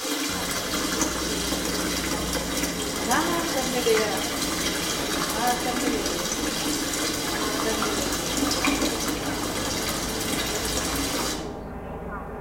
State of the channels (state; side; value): identical; both; correlation 1.00